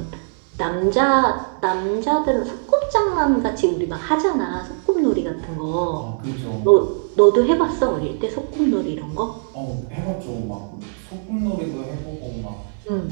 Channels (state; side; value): silent; left; 60 dB below the other